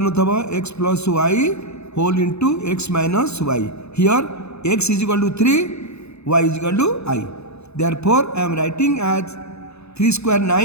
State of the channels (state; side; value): late; right; 0.80 ms